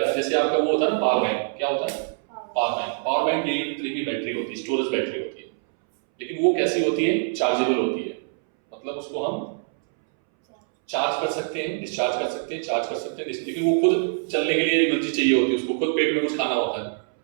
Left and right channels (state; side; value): silent; left; 62 dB below the other